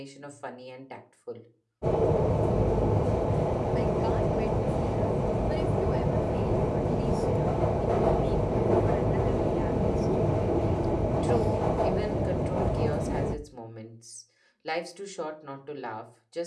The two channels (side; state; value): both; identical; correlation 1.00